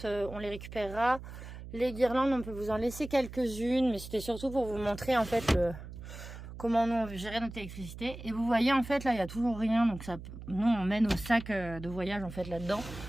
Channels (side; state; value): right; noise; hum, 12 dB below the sound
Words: on les récupérera. Les guirlandes, on peut vous en laisser quelques-unes. Mais c'était surtout pour vous montrer en fait comment nous on gérait notre électricité. Et vous voyez en fait là, il n'y a toujours rien. Donc ça, nous on met nos sacs de voyage en fait là-dedans.